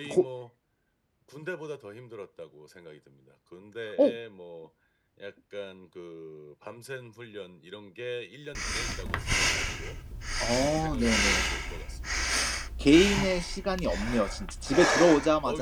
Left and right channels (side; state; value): both; identical; correlation 1.00